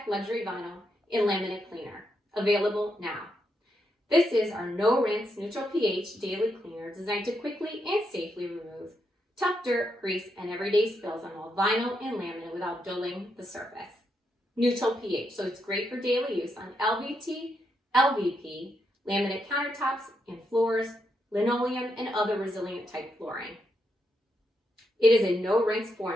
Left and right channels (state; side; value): normal; both; correlation 0.81